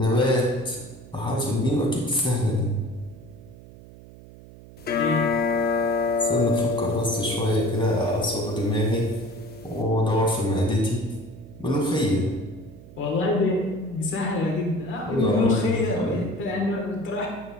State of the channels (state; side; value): noise; right; hum, 19 dB below the sound